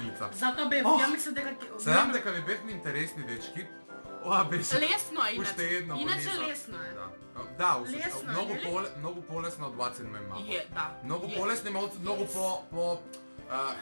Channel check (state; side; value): inverted; both; correlation -1.00